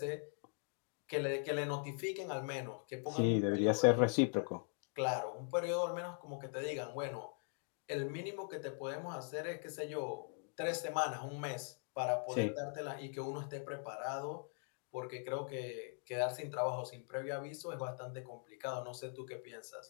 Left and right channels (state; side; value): silent; right; 50 dB below the other